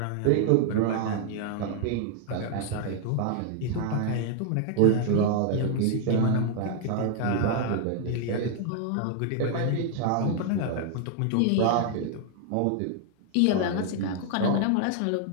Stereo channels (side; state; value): both; different; correlation 0.00